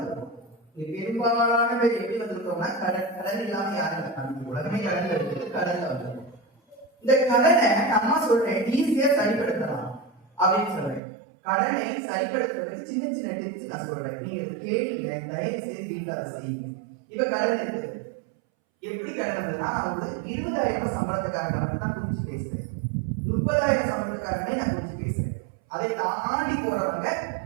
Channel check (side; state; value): left; drops out; at 11.0 s